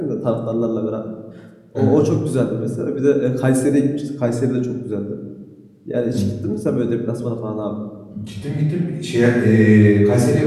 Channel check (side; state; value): both; identical; correlation 1.00